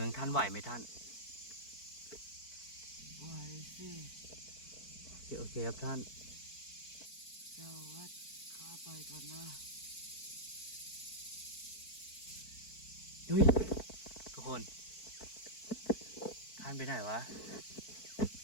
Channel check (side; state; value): right; late; 4.5 ms